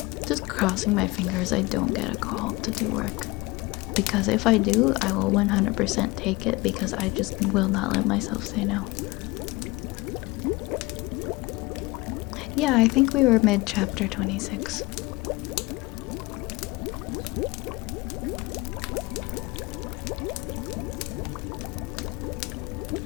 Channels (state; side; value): quieter; right; 22.8 dB